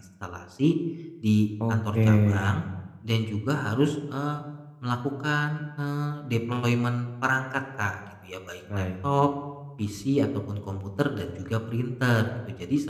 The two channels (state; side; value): identical; both; correlation 1.00